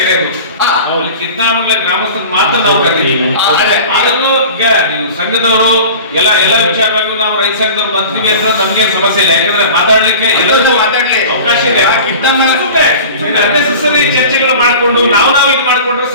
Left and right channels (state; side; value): inverted; both; correlation -0.38